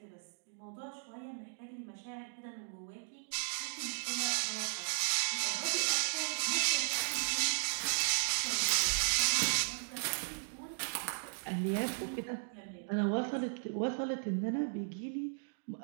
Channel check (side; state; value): left; silent; digital silence